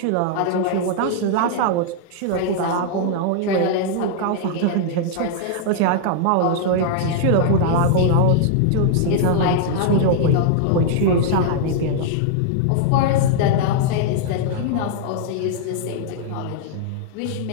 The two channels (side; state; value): both; different; correlation -0.01